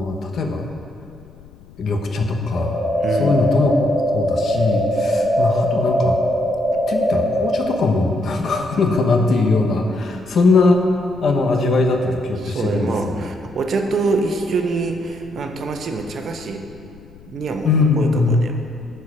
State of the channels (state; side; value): noise; left; rumble, 23 dB below the sound